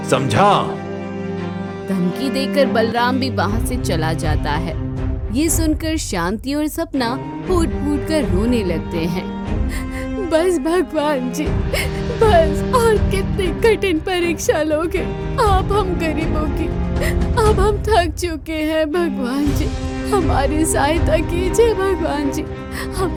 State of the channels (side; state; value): both; identical; correlation 1.00